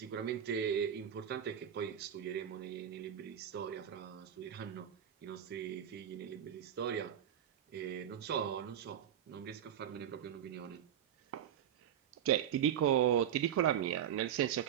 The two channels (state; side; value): quieter; left; 9.7 dB